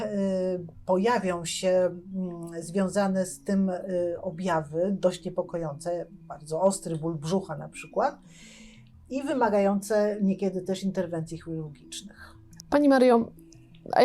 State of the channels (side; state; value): both; identical; correlation 1.00